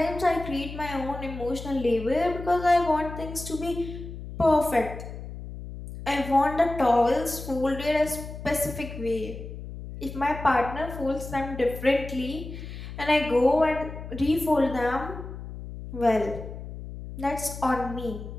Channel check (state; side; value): noise; left; hum, 10 dB below the sound